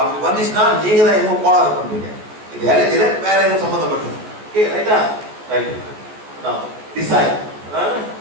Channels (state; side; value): late; left; 14 ms